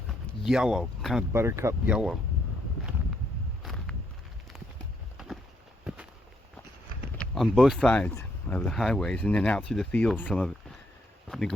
yellow, kind of buttercup yellow. On both sides of the highways, and then out through the fields, some of it, the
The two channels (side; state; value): both; normal; correlation 0.74